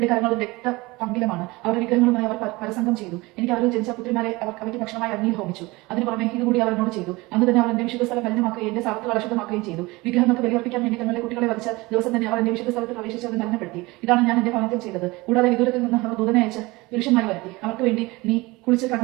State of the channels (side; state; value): left; quieter; 22.3 dB